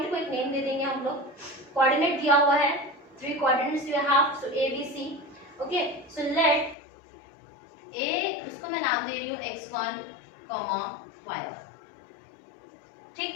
को एक नेम दे देंगे हम लोग, कोऑर्डिनेट दिया हुआ है, 3 coordinates you have, so A B C. Okay, so let A, उसको मैं नाम दे रही हूँ x1, y1। ठीक,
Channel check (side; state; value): right; drops out; at 6.8 s